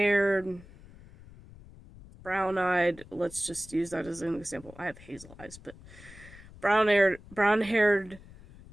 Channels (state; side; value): noise; left; rumble, 20 dB below the sound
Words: brown-eyed, let's just use that as an example. I have hazel eyes, but brown-haired,